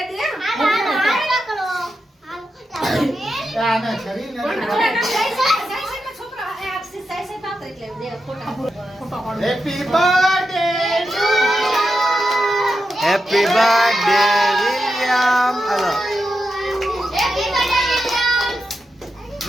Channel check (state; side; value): normal; both; correlation 0.88